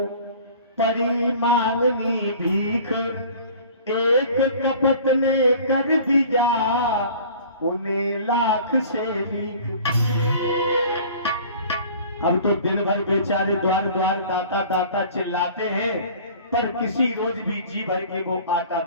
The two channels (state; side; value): inverted; both; correlation -0.46